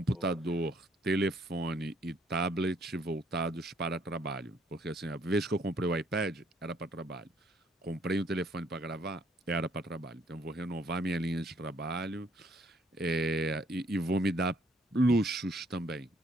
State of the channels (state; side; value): normal; both; correlation 0.66